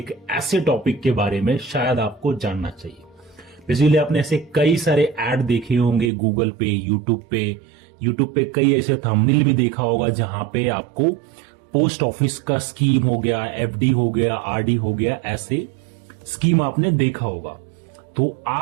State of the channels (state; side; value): drops out; left; at 6.1 s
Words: ऐसे टॉपिक के बारे में शायद आपको जानना चाहिए। बेसिकली आपने ऐसे कई सारे ऐड देखे होंगे गूगल पे, यूट्यूब पे कई ऐसे थंबनेल भी देखा होगा जहां पे आपको पोस्ट ऑफिस का स्कीम हो गया, एफडी हो गया, आरडी हो गया, ऐसे स्कीम आपने देखा होगा। तो